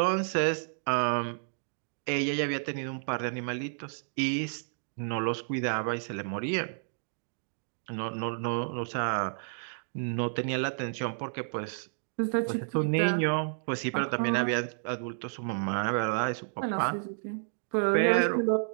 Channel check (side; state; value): left; silent; digital silence